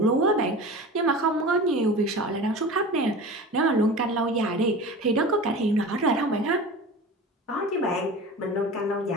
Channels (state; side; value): normal; both; correlation 0.34